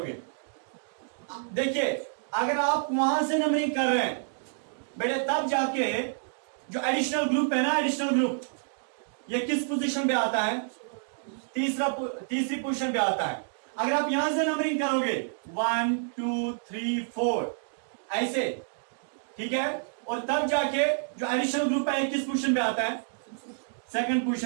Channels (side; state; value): left; silent; digital silence